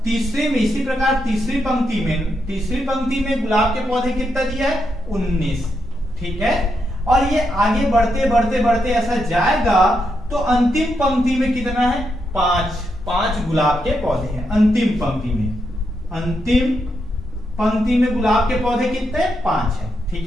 तीसरे में इसी प्रकार तीसरी पंक्ति में गुलाब के पौधे कितना दिया है 19, ठीक है। और ये आगे बढ़ते ऐसा जाएगा तो अंतिम पंक्ति में कितना है 5 गुलाब के पौधे हैं। अंतिम पंक्ति में गुलाब के पौधे कितने 5 है,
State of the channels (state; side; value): normal; both; correlation 0.82